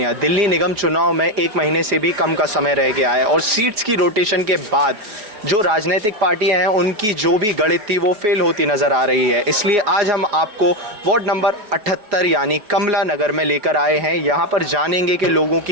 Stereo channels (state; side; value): late; left; 4.8 ms